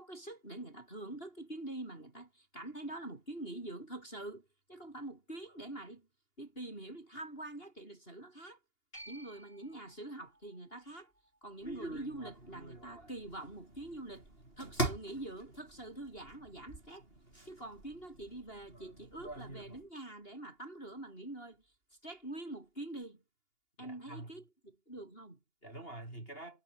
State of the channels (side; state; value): right; late; 2.8 ms